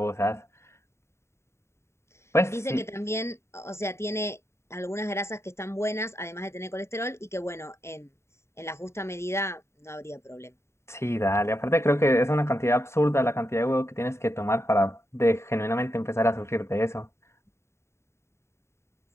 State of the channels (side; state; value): right; late; 0.13 ms